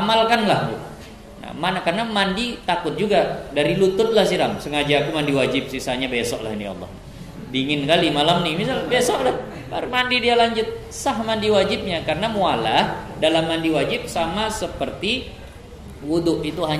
Nah, mana karena mandi takut juga dari lutut lah siram. Sengaja aku mandi wajib, sisanya besok lah ini Allah. Dingin kali malam nih, misal besok lah baru mandi dia lanjut, sah mandi wajibnya. Karena mualah dalam mandi wajib sama seperti wudu, itu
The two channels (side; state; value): both; identical; correlation 1.00